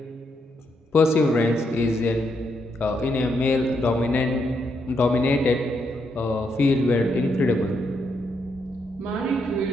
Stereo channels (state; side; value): normal; both; correlation 0.78